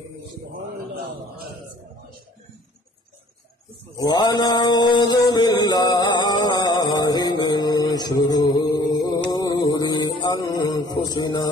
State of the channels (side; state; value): both; normal; correlation 0.54